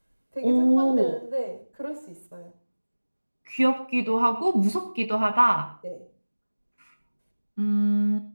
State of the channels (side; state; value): both; inverted; correlation -1.00